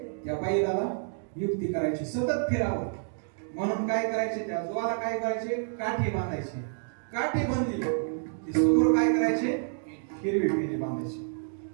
त्या बैलाला युक्ती करायची, सतत फिरावं म्हणून काय करायचे? त्या जोवाला काय करायचे? काठी बांधायची. काठी बांधली की समोर काय करायचे? हिरवी पिंडी बांधायची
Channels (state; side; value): silent; left; 59 dB below the other